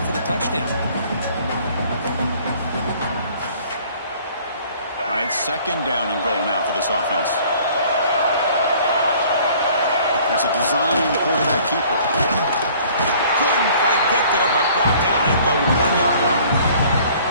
for the touchdown. All right, second down and goal now for this offense. That's a design quarterback keeper. Couldn't quite get there, but brought down at the 1-yard line.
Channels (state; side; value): inverted; both; correlation -0.54